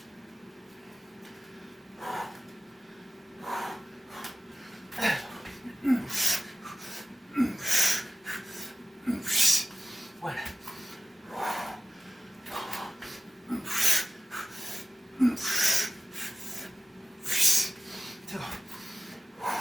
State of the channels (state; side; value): normal; both; correlation 0.96